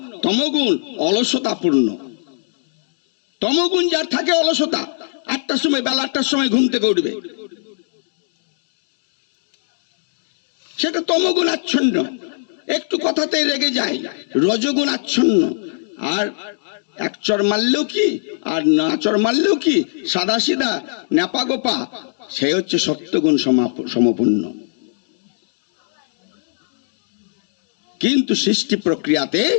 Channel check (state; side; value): silent; right; digital silence